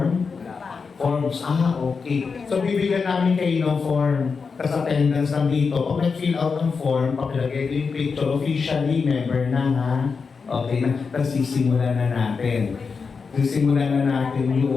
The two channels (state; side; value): quieter; right; 5.2 dB